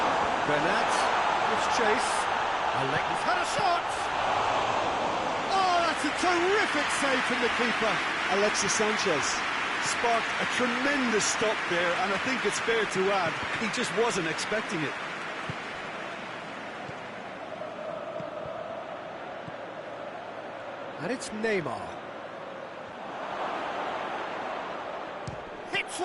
Bernat gives chase. Alexis had a shot! Oh, that's a terrific save from the keeper. Alexis Sanchez sparked a tremendous stop there, and I think it's fair to add, he just wasn't expecting it. And it's Neymar. Hits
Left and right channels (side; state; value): both; identical; correlation 1.00